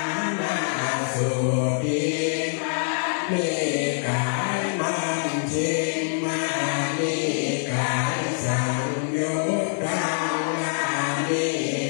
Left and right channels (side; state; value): right; silent; digital silence